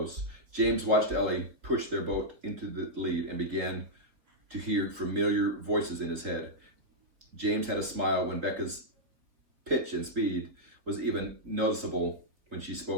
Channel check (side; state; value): left; late; 4.1 ms